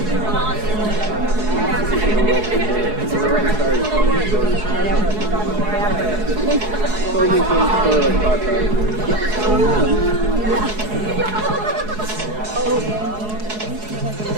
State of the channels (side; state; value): left; late; 4.7 ms